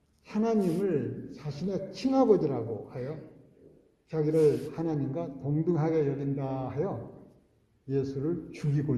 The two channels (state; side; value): identical; both; correlation 1.00